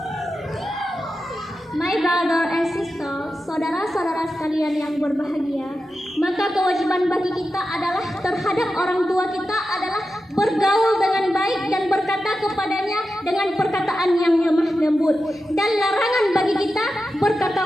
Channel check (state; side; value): normal; both; correlation 0.91